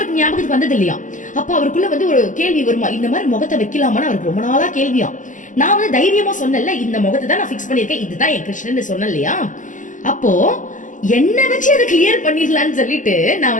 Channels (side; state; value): right; late; 0.37 ms